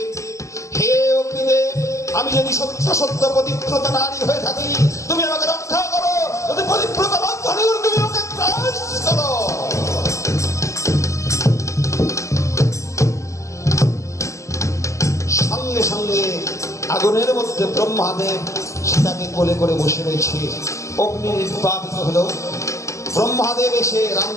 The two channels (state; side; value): late; right; 0.15 ms